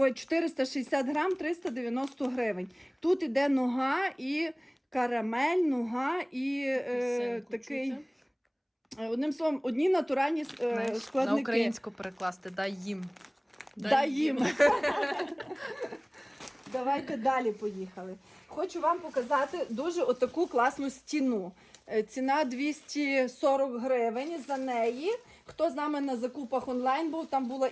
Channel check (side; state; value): both; identical; correlation 1.00